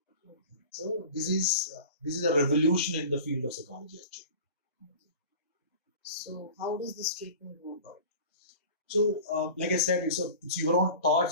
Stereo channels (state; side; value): inverted; both; correlation -0.37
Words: So this is a revolution in the field of psychology, actually. So how does this treatment go about? So, like I said, it's your own